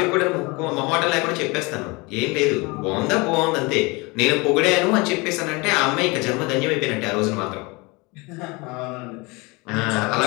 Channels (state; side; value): quieter; right; 26.1 dB